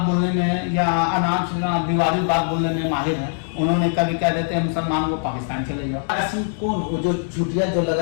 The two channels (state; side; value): silent; right; digital silence